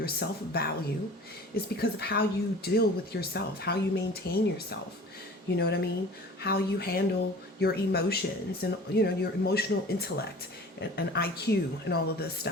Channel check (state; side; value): normal; both; correlation 0.43